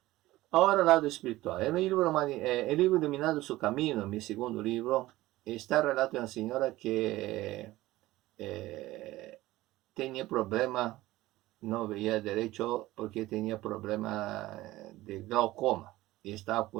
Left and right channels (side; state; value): left; quieter; 17.3 dB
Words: Ahora el lado espiritual. El libro Iluminando su Camino, mi segundo libro, está el relato de una señora que tenía problema, no veía derecho porque tenía problema de glaucoma y estaba